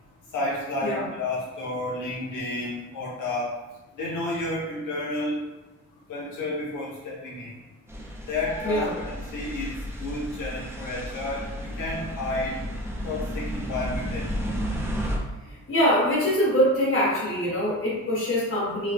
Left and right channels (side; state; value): both; normal; correlation 0.25